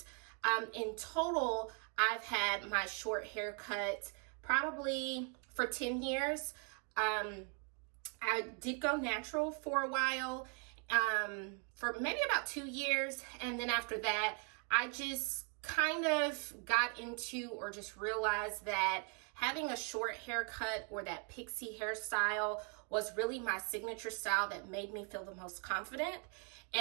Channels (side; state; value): left; quieter; 39.0 dB